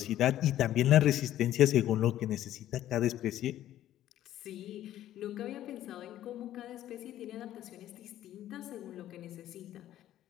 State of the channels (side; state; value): right; quieter; 12.7 dB